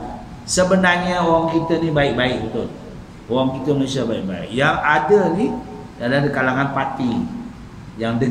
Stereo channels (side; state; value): both; identical; correlation 1.00